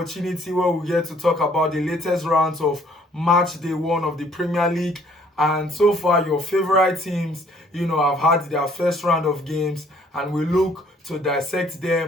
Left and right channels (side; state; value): both; normal; correlation 0.61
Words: where we get to talk about the latest rounds of match day one of the Premier League. And so far, your favorite teams, have had their first round of games, and we look to dissect